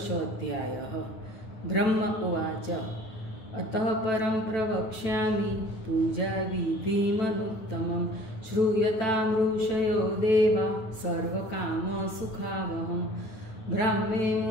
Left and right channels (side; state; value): right; late; 9.1 ms